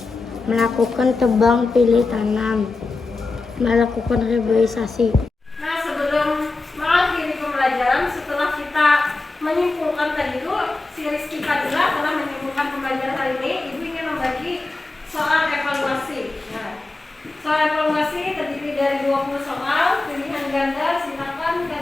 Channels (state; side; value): quieter; right; 3.5 dB